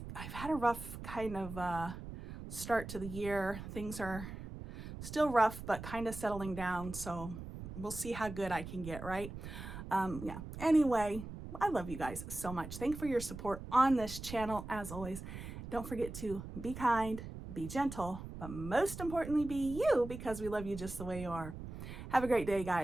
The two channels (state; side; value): noise; right; rumble, 10 dB below the sound